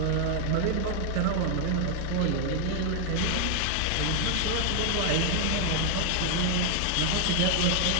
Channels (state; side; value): different; both; correlation 0.00